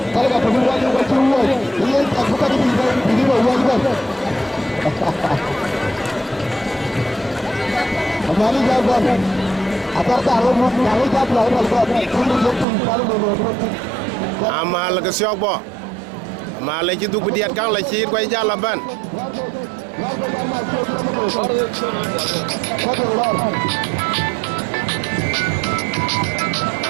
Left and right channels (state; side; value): drops out; left; at 12.7 s